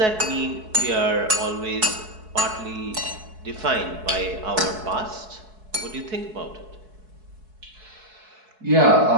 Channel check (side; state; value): left; late; 4.7 ms